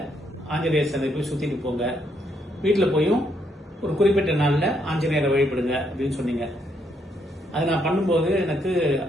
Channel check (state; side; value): normal; both; correlation 0.75